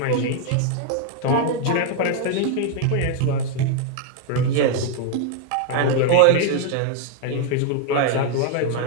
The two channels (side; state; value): both; different; correlation 0.00